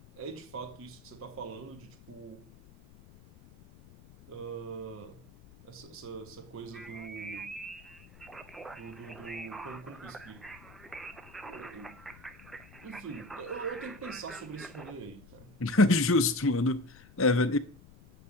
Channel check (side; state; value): left; noise; rumble, 21 dB below the sound